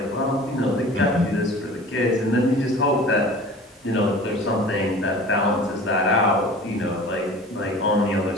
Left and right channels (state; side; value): normal; both; correlation 0.42